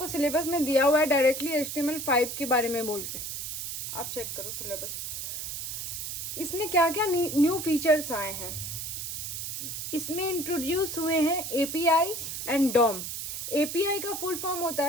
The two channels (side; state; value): right; noise; hiss, 5 dB below the sound